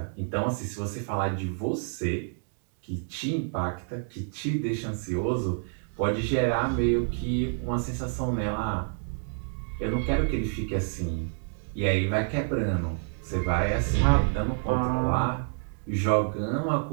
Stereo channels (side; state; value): left; silent; digital silence